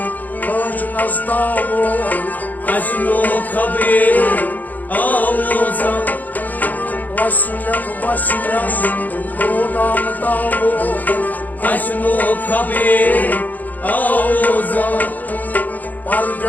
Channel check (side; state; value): right; late; 0.082 ms